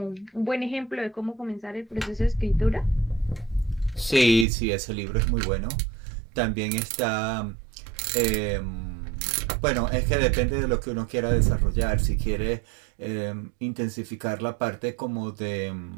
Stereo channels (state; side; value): drops out; left; at 4.5 s